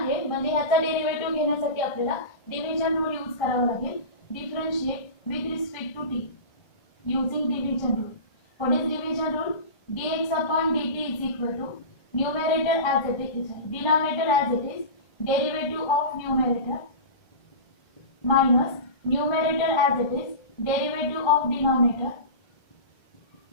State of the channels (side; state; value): right; late; 1.3 ms